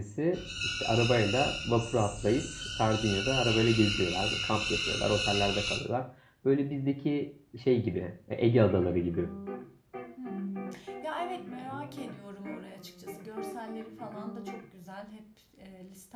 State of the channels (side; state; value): both; identical; correlation 1.00